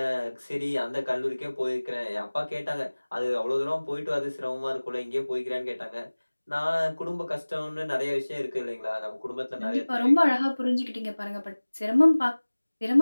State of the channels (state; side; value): inverted; both; correlation -1.00